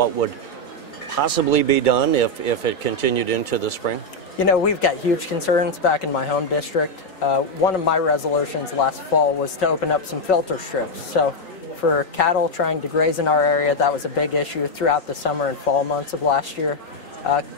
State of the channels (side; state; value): right; late; 3.9 ms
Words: would possibly be done if it continued into the spring? You know, we've got huge concerns back in my home district. One of my resolutions last fall was to open up some filter strips. So for cattle trying to graze in our area, that was a big issue throughout the summer and fall months of last year.